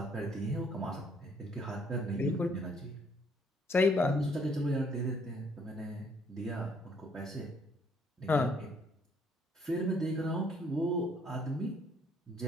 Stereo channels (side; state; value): both; normal; correlation 0.65